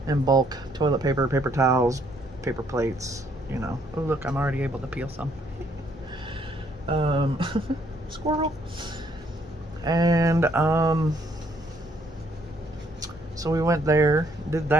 in bulk. Toilet paper, paper towels, paper plates, you know. Oh, look, I'm already able to peel some. Squirrel. And, so we went there, did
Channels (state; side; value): normal; both; correlation 0.68